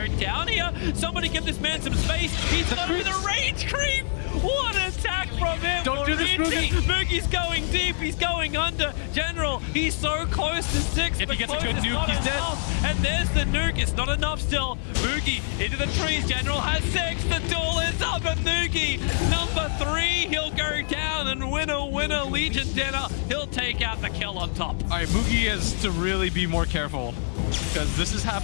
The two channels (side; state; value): right; silent; 61 dB below the other